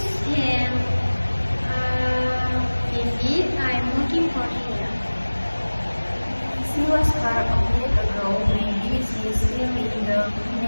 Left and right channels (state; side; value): inverted; both; correlation -1.00